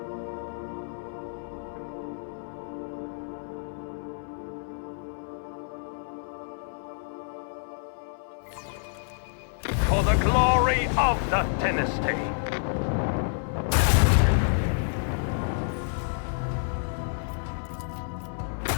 For the glory of the dynasty.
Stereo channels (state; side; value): silent; right; 59 dB below the other